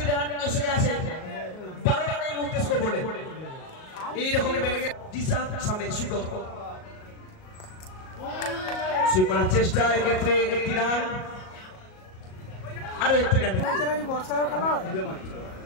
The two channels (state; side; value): late; right; 38 ms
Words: রান এসে গেছে 12 রানে এই মুহূর্তে স্কোরবোর্ডে। এইরকমই ব্যাটিং দিশা সামনে সুযোগ সুইপ করার চেষ্টা, এক্ষেত্রে 1টি রান আরো 1টি রান।